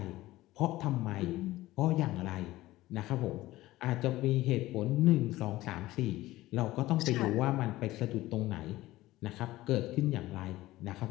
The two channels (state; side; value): quieter; right; 17.0 dB